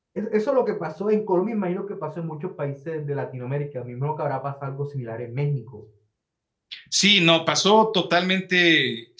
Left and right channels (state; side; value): identical; both; correlation 1.00